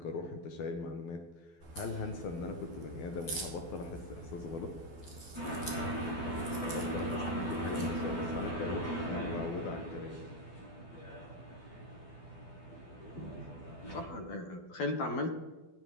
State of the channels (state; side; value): late; right; 12 ms